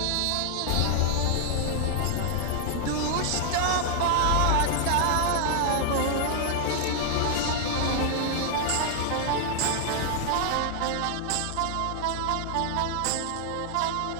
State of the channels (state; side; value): different; both; correlation 0.00